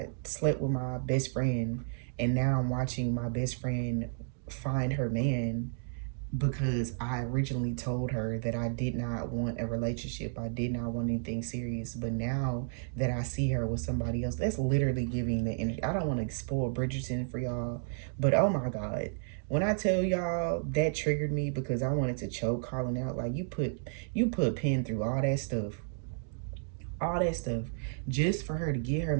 slept with my best friend, and now I'm watching my best friend find her man, because I originally told her that I did not want a relationship. I did not want anything serious. But now that I see her with somebody else, that's literally giving the energy. I don't want to spoil Bridgerton for y'all, but oh my God. When I tell y'all, that triggered me, because I wanted to choke calling out. Like, you put pen through all that stuff. All that stuff. Just for her to get her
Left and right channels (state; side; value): silent; left; digital silence